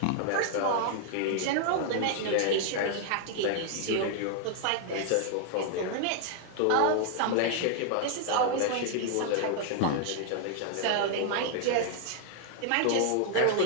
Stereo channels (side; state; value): both; different; correlation -0.01